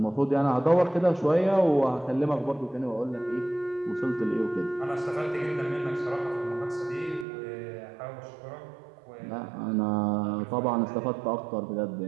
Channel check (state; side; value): drops out; left; at 7.2 s